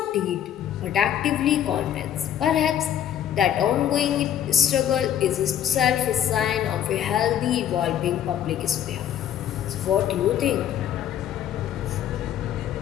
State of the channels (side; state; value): right; quieter; 10.2 dB